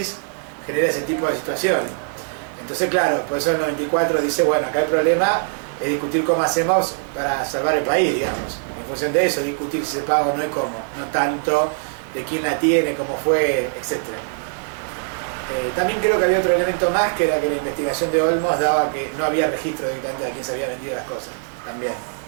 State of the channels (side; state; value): left; silent; digital silence